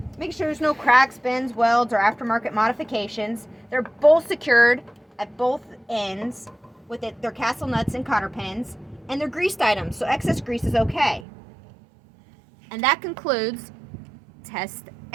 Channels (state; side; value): drops out; left; at 11.2 s